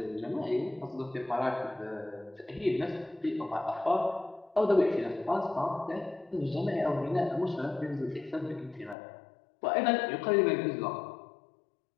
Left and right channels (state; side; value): drops out; right; at 9.0 s